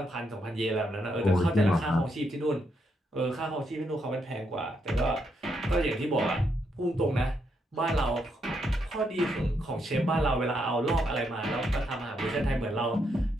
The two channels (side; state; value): both; normal; correlation 0.78